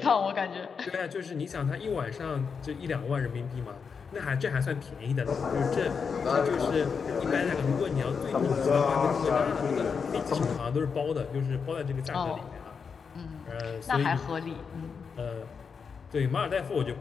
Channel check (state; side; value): quieter; right; 5.9 dB